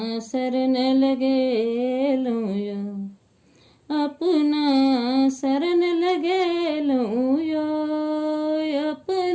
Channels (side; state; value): both; identical; correlation 1.00